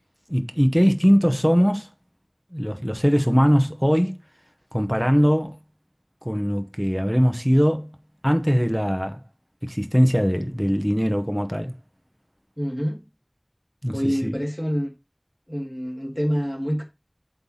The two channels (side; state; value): both; identical; correlation 1.00